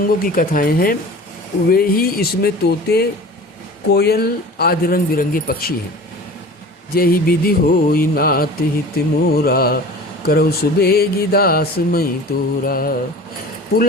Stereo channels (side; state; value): both; normal; correlation 0.39